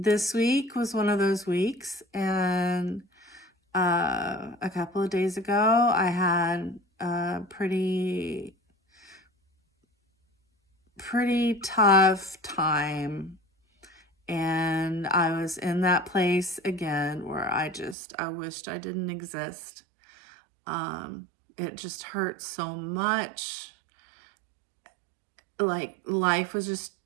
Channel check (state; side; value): drops out; left; at 17.9 s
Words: week was one of those weeks. And a couple of days ago, I had a pretty tough time. And I was in that place again where I wished I didn't exist. It just hurt so much. Like, life was just